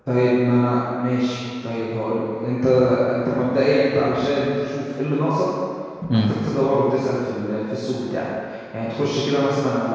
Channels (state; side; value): identical; both; correlation 1.00